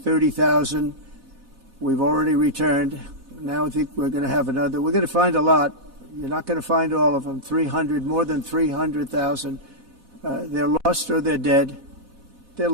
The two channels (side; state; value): left; late; 4.1 ms